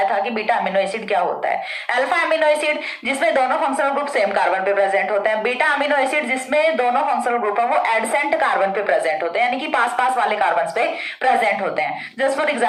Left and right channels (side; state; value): both; identical; correlation 1.00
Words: था कि बीटा अमीनो एसिड क्या होता है। अल्फा अमीनो एसिड जिसमें दोनों फंक्शनल ग्रुप सेम कार्बन पे प्रेजेंट होते हैं, बीटा अमीनो एसिड जिसमें दोनों फंक्शनल ग्रुप है वो एडसेंट कार्बन पे प्रेजेंट होते हैं, यानी कि पास पास वाले कार्बन पे प्रेजेंट होते हैं। जस्ट फॉर